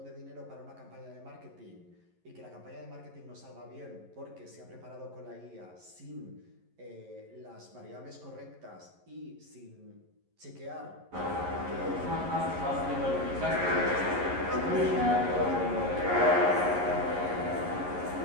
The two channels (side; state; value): left; late; 11 ms